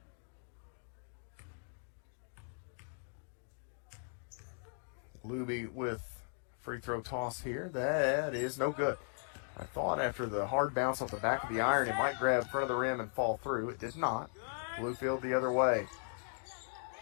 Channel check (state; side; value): silent; right; 53 dB below the other